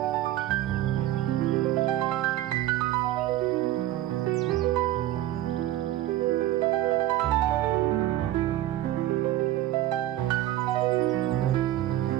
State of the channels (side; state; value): left; quieter; 14.2 dB